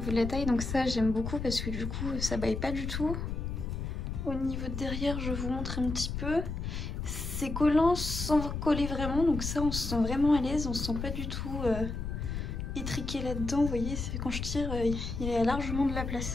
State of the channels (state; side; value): noise; left; rumble, 4 dB below the sound